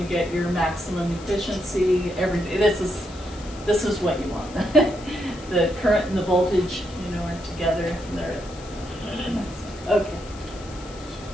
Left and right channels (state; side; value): noise; left; hiss, 19 dB below the sound